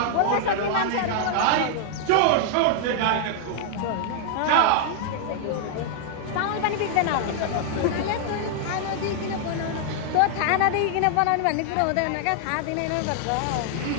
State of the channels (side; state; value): both; different; correlation -0.01